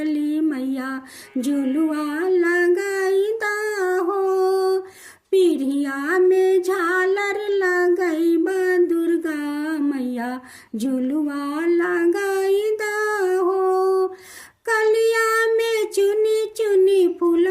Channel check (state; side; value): identical; both; correlation 1.00